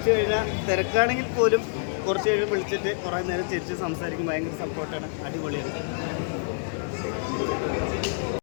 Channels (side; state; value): right; silent; digital silence